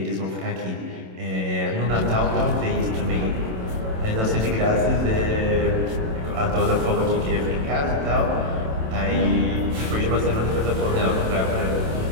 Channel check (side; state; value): left; late; 27 ms